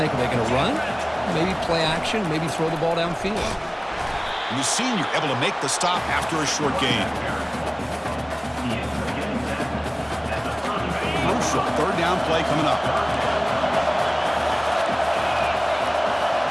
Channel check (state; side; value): identical; both; correlation 1.00